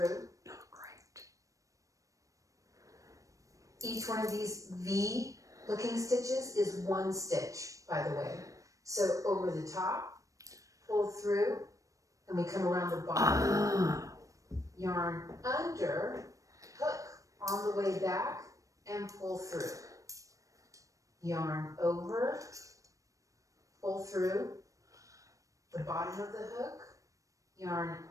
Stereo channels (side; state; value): left; late; 0.16 ms